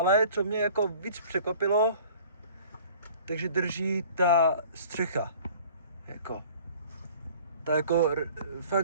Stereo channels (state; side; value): inverted; both; correlation -0.49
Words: co mě jako víc překvapilo, takže drží ta střecha, ta jako